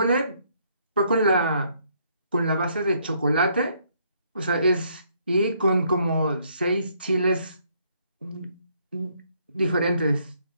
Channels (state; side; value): inverted; both; correlation -0.69